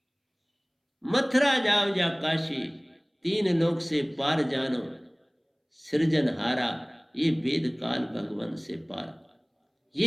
मथुरा जाओ या काशी, तीन लोक से पार जानो, सृजनहारा ये वेद काल भगवान से पार।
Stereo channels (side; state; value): both; identical; correlation 1.00